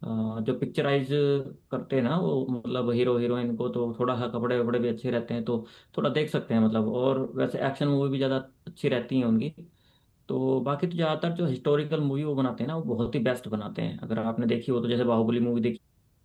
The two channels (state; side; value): identical; both; correlation 1.00